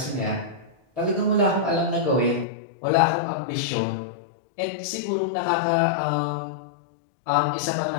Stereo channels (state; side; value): drops out; right; at 2.5 s